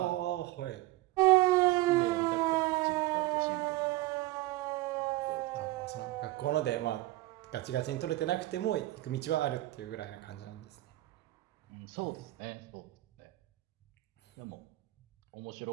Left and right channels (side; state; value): left; quieter; 18.4 dB